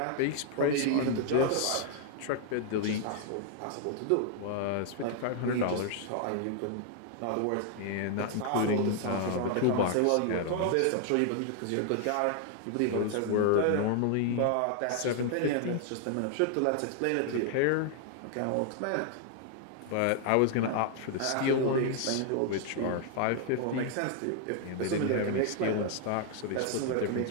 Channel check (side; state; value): both; different; correlation 0.00